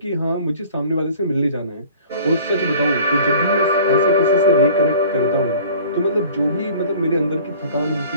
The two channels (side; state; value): both; inverted; correlation -0.47